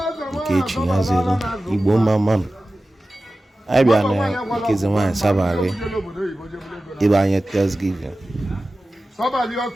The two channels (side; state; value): both; normal; correlation 0.95